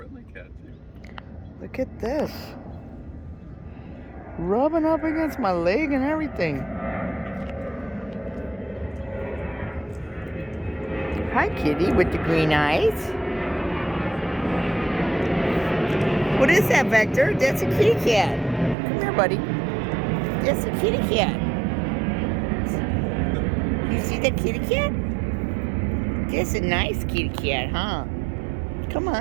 cat too. Look at this. Rubbing up against my leg and everything. Hi, kitty with the green eyes. What is that, Wächter? That's a kitty cat. Come here, buddy. That's a kitty cat. You see that kitty cat? That's a nice kitty cat, huh? Come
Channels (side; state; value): left; drops out; at 18.8 s